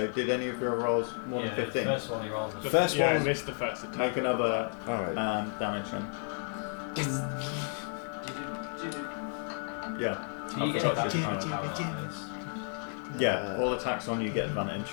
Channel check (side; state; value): right; silent; 56 dB below the other